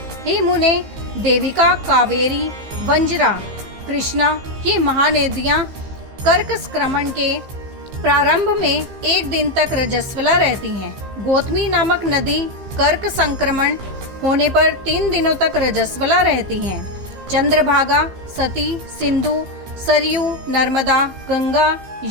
हे मुने, देविका, कावेरी, वंजरा, कृष्णा, ये महानदियां कर्क संक्रमण के प्रारंभ में 1 दिन तक रजस्वला रहती हैं। गौतमी नामक नदी कर्क संक्रमण होने पर 3 दिनों तक रजस्वला रहती हैं। चंद्रभागा, सती, सिंधु, सरयू, नर्मदा, गंगा,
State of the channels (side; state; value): left; late; 15 ms